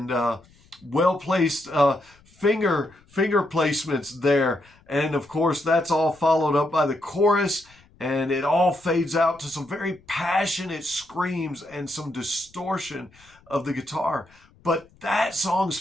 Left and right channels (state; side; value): noise; left; rumble, 29 dB below the sound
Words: well-placed finger placements there. And of course, that's all followed up by the chorus, and it all fades out to some very passionate screams and some distortion of the guitar. But that song's